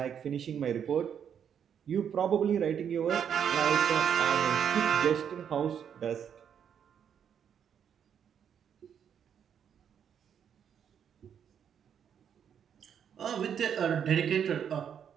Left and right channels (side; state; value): left; quieter; 8.3 dB